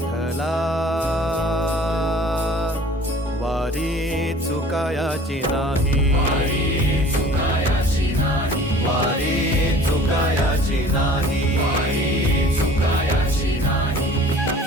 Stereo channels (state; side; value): normal; both; correlation 0.47